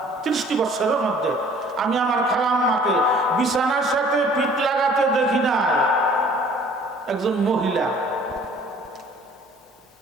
30টি বৎসরের মধ্যে আমি আমার খালা আম্মাকে বিছানার সাথে পিঠ লাগাতে দেখি নাই। একজন মহিলা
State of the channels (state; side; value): normal; both; correlation 0.53